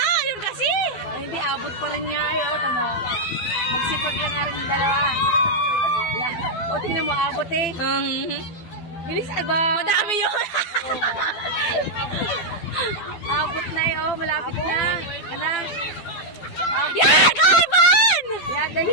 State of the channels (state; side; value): late; right; 12 ms